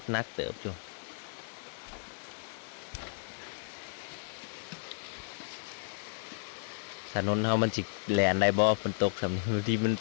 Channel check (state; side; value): silent; right; 55 dB below the other